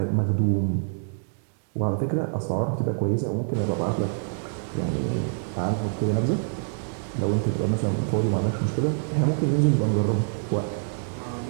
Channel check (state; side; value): silent; left; digital silence